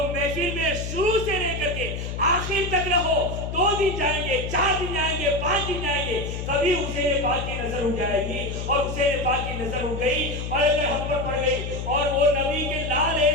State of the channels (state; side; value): noise; left; hum, 5 dB below the sound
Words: محفل میں شروع سے لے کر کے آخر تک رہو. 2 دن جائیں گے, 4 دن جائیں گے, 5 دن جائیں گے, کبھی حسین پاک کی نظر اٹھ جائے گی, اور حسین پاک کی نظر اٹھ گئی اور اگر ہم پر پڑ گئی. اور وہ نبی کے لال